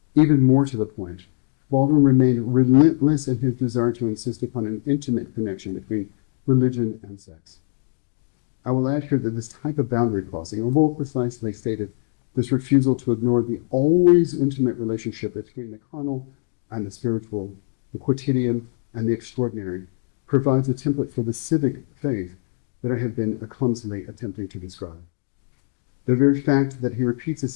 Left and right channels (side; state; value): right; silent; digital silence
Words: Even more to the point, Baldwin remained relentless in his desire to insist upon an intimate connection between religion and sex. I will add here that this type of boundary crossing, or more precisely stated, this refusal to ignore the always intimate relationship between the carnal and the spiritual, the quotidian and the extraordinary, provides a template for the civic faith that I have been clumsily attempting to describe. The very fact that he repeats